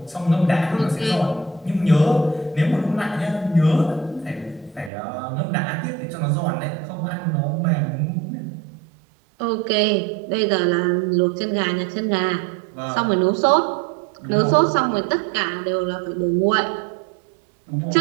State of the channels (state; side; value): drops out; left; at 4.9 s